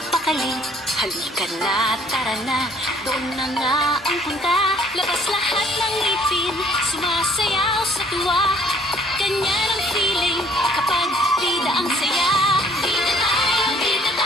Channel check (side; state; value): both; normal; correlation 0.59